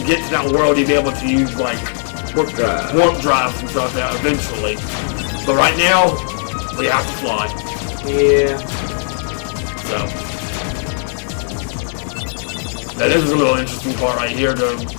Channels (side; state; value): right; silent; digital silence